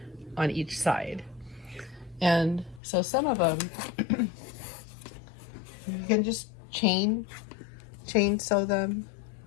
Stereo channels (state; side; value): drops out; right; at 2.8 s